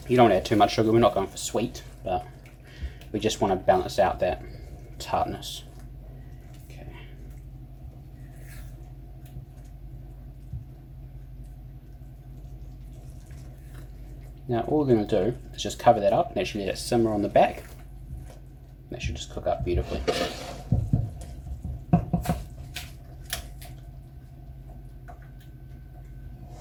You don't want to add too much sugar, we're not going for sweet, but we just want to balance out that tartness. Okay. Now all we're going to do is just cover that up and actually let it simmer on the back. That should just cook up beautifully.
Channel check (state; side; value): identical; both; correlation 1.00